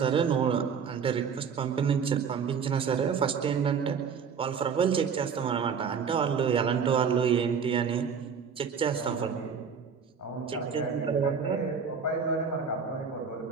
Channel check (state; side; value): quieter; left; 6.4 dB